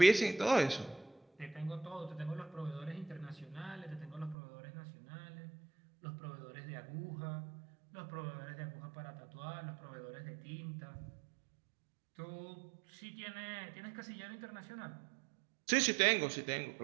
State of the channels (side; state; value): left; drops out; at 4.4 s